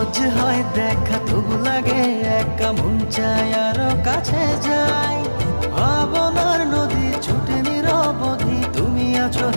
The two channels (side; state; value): both; inverted; correlation -1.00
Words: হয় দেখা তবু লাগে একা মন চায় আরো কাছে যাই। ভাবনার নদী ছুটে নিরবধি, তুমি আছো